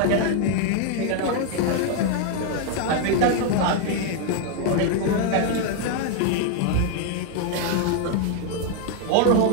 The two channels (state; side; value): different; both; correlation 0.00